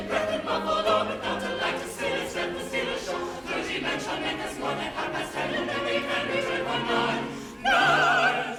breath and muffled door, without a light to still as death, the still ashore. Clergymen shall make us one at 10:30, and then we can return for none. None.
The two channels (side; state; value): both; identical; correlation 1.00